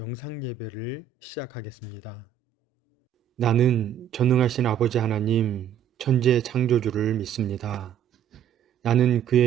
예배를 시작하겠습니다. 나는 전능하신 아버지 하나님 천재 창조주를 믿습니다. 나는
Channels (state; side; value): quieter; left; 9.4 dB